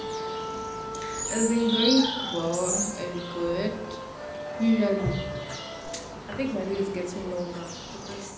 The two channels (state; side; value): identical; both; correlation 1.00